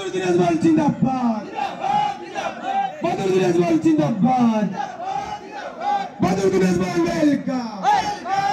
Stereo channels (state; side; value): identical; both; correlation 1.00